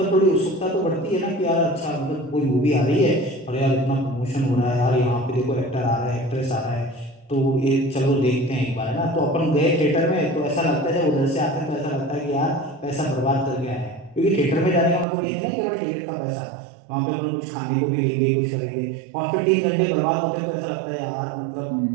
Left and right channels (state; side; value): drops out; left; at 15.1 s